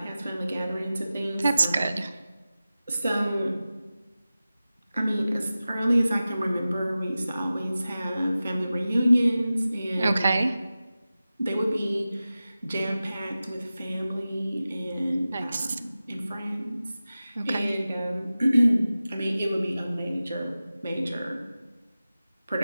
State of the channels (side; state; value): both; inverted; correlation -0.95